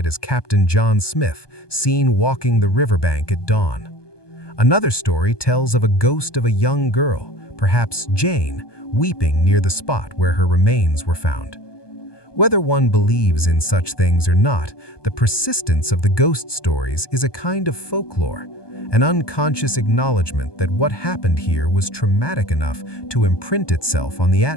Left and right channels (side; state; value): right; late; 1.2 ms